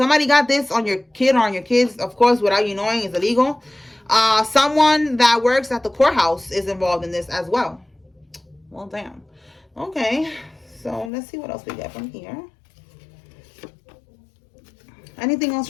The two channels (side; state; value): right; drops out; at 11.1 s